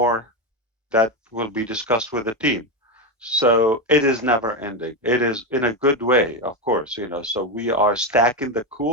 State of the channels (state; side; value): normal; both; correlation 0.12